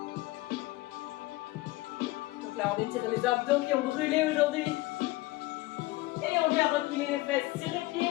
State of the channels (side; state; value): right; quieter; 19.6 dB